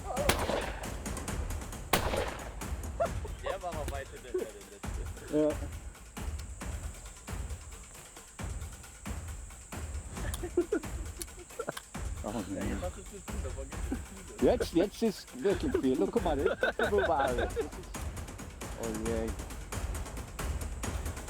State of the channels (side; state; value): both; identical; correlation 1.00